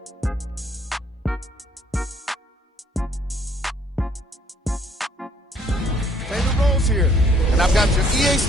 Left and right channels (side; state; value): both; normal; correlation 0.63